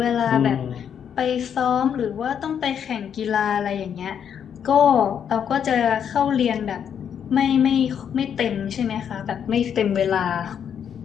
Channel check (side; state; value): right; quieter; 8.3 dB